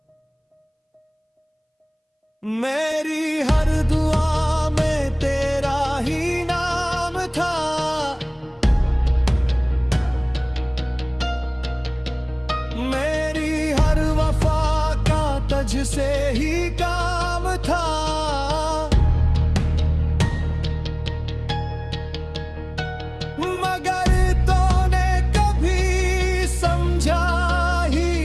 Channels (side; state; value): both; identical; correlation 1.00